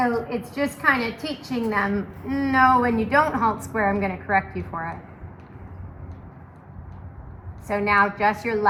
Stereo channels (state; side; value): identical; both; correlation 1.00